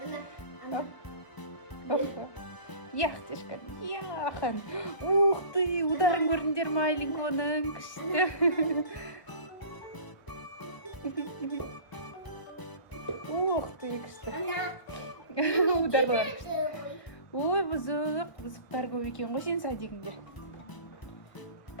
Яқтешка, яхан. Ух ты, ударын көрдіңдер ма Айлинконың? Күшті. Ух ты, күшті. Ударлар. Ой, бұзықтар көп екен ғой сен садигіңде.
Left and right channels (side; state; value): right; late; 1.0 ms